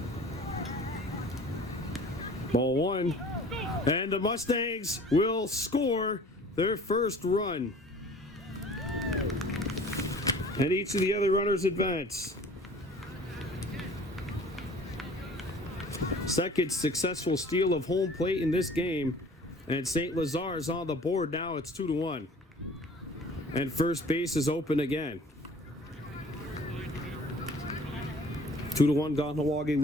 Ball 1, and the Mustangs will score their first run. And each of the other runners advance. Second successful steal of home plate in this game, and St-Lazare is on the board now. It's 2-1, and first base is open again. 2-1 Kahnawake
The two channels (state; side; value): normal; both; correlation 0.48